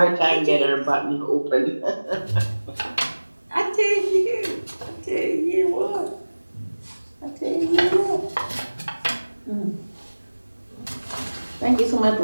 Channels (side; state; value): both; inverted; correlation -1.00